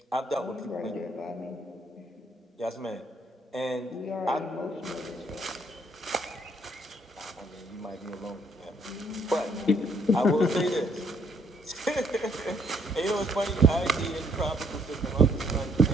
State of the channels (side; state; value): both; normal; correlation 0.67